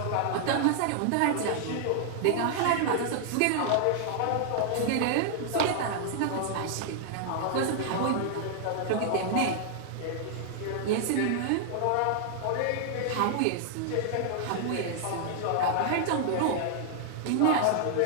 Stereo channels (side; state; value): both; different; correlation -0.01